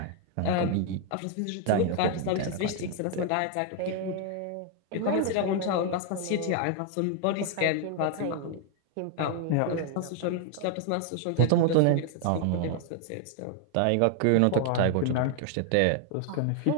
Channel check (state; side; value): different; both; correlation 0.00